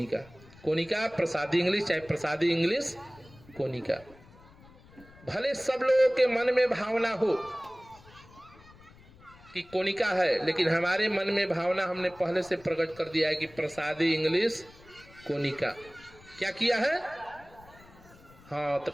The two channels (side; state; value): left; noise; rumble, 24 dB below the sound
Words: कोनिका प्रसादी इंग्लिश, चाहे प्रसादी इंग्लिश कोनिका। भले सब लोगों के मन में भावना हो कि कोनिका है, लेकिन हमारे मन में भावना हमने पहले से प्रकट कर दिया है कि प्रसादी इंग्लिश कोनिका। क्या किया है? हाँ, तो